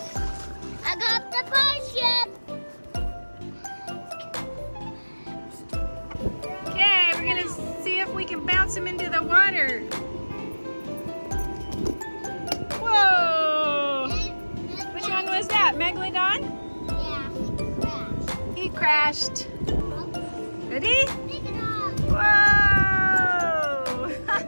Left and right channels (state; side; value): inverted; both; correlation -1.00